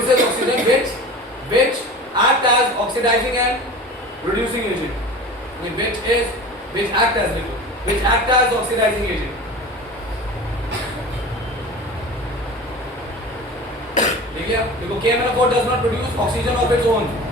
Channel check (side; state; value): both; normal; correlation 0.36